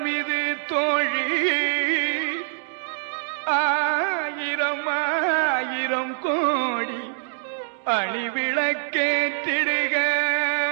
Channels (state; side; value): silent; left; digital silence